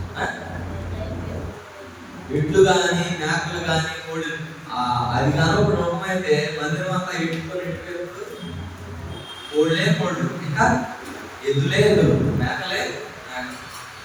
ఎడ్లు కానీ, మేకలు కానీ, కోళ్ళు. అది కానీ ఒక నమ్మకమైతే మందిరం అంతా ఎట్టుకొని కోళ్ళు, ఇంకా ఎద్దులే ఎద్దులు, మేకలే మేకలు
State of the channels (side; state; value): both; identical; correlation 1.00